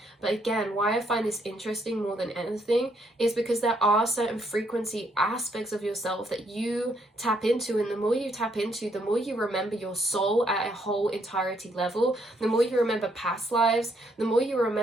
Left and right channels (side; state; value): both; normal; correlation 0.72